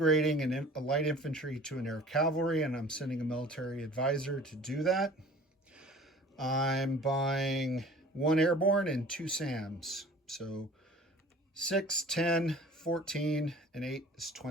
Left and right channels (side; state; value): both; normal; correlation 0.46